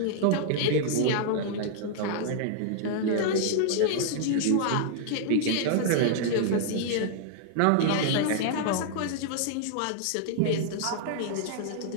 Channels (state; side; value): different; both; correlation -0.01